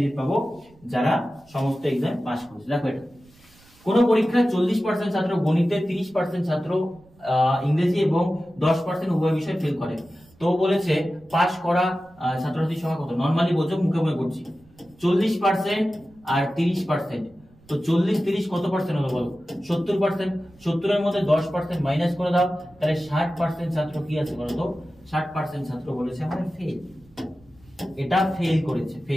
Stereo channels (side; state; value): right; noise; rumble, 28 dB below the sound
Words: পাবো যারা সমস্ত এক্সাম পাস করেছে। দেখো এটা কোন পরীক্ষায় 40% ছাত্র গণিতে, 30% ছাত্র ইংরেজি এবং 10% উভয় বিষয় ফেল করে। তো বলেছে পাস করা ছাত্রছাত্রীর সংখ্যা কত? নরমালি বোঝো, মুখে মুখে করছি। 40% আর 30%, তো 40-30 কত পার্সেন্ট হলো বলো? 70%। 70 এর মধ্যে 10% মাইনাস করে দাও, তাহলে 60% ছাত্র কি আছে বলো তো? 60% ছাত্র বলেছে আমাদের ফেল, এটা ফেল করেছে,